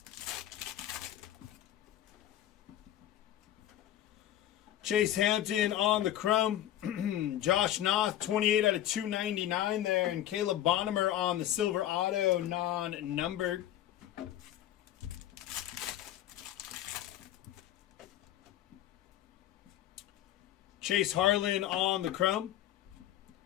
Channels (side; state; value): right; quieter; 12.6 dB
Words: Chase Hampton on the chrome. Josh Noth, 28 out of 299 there. And Caleb Bonnemer on the silver auto, non-numbered. Chase Harlan on the chrome.